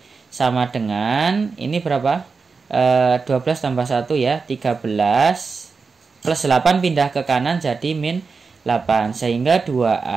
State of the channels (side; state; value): left; quieter; 4.7 dB